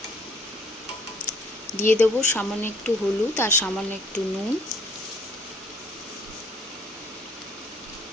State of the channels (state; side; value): normal; both; correlation 0.59